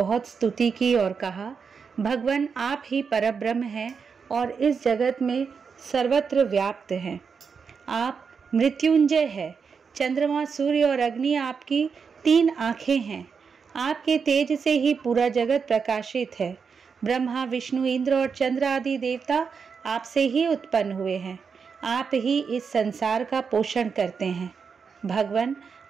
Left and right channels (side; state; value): left; quieter; 5.8 dB